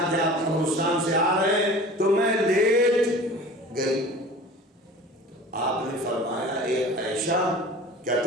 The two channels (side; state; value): both; normal; correlation 0.41